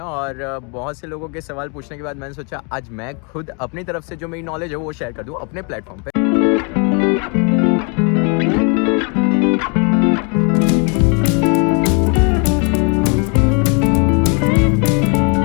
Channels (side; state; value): right; quieter; 35.3 dB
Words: और बहुत से लोगों के सवाल पूछने के बाद मैंने सोचा आज मैं खुद अपनी तरफ से जो मेरी नॉलेज है वो शेयर कर दूं अपने प्लेटफॉर्म पे।